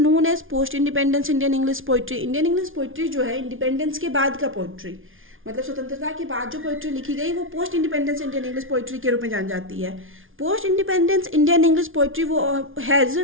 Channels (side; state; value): left; late; 0.58 ms